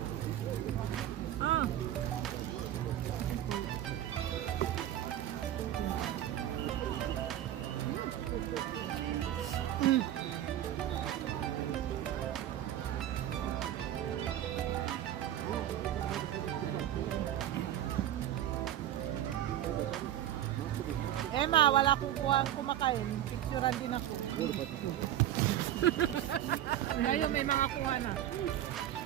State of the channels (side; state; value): left; quieter; 11.9 dB